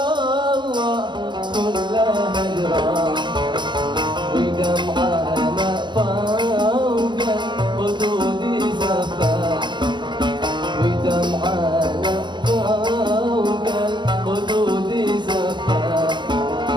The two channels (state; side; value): late; left; 0.22 ms